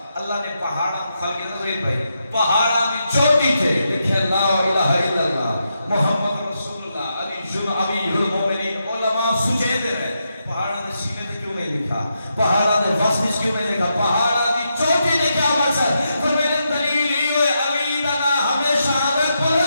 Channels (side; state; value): both; inverted; correlation -0.84